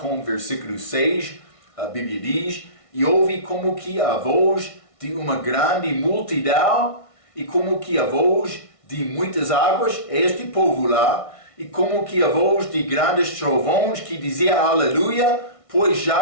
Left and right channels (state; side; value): late; right; 1.6 ms